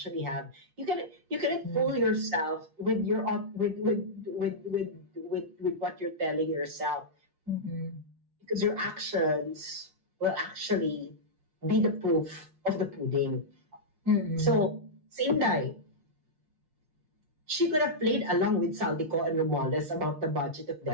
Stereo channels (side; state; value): left; late; 6.3 ms